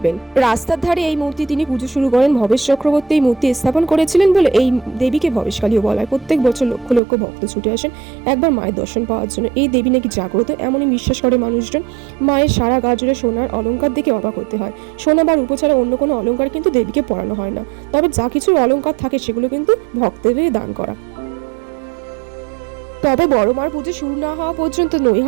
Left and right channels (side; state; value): left; drops out; at 7.0 s